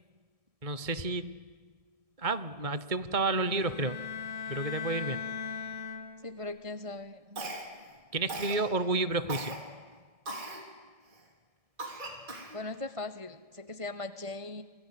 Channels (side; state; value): left; late; 1.7 ms